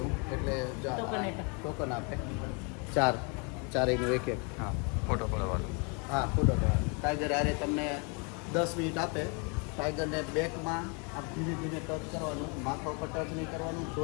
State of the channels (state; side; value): quieter; right; 34.1 dB